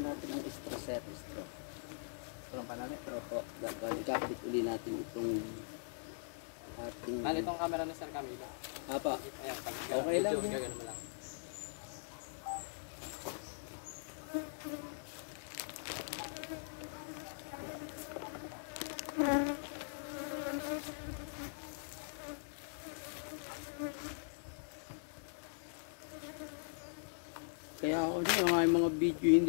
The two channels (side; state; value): right; silent; 51 dB below the other